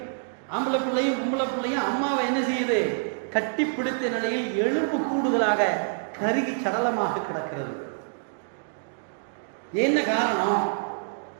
ஆம்பளை பிள்ளையும் பொம்பளை பிள்ளையும் அம்மாவை என்ன செய்யுது? கட்டி பிடித்த நிலையில் எலும்பு கூடுதலாக கருகி சடலமாக கிடக்கிறது. என்ன காரணம்?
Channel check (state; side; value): silent; left; digital silence